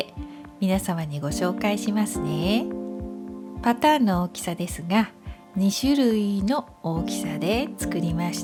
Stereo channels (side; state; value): both; identical; correlation 1.00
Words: 皆様にご紹介しますね。パターンの大きさですが、2種類の大きさで作りまし